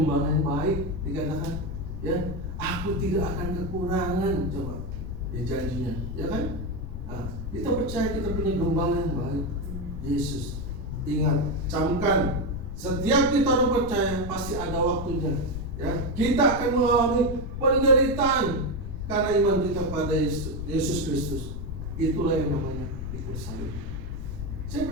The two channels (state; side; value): noise; left; rumble, 8 dB below the sound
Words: yang baik, dikatakan, ya, aku tidak akan kekurangan, coba, ya, janjinya, ya kan? Kita percaya kita punya gembala yang baik, Yesus. Ingat, camkan, setiap kita percaya pasti ada waktunya, ya. Kita akan mengalami penderitaan karena iman kita pada Yesus Kristus. Itulah yang namanya pikul salib. Saya